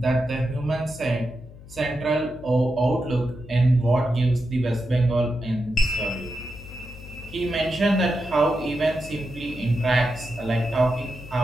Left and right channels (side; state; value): left; noise; hum, 18 dB below the sound